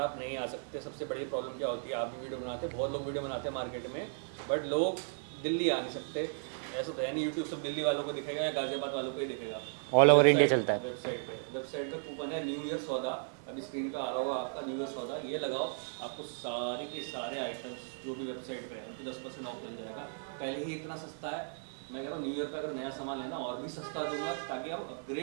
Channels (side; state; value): left; silent; 54 dB below the other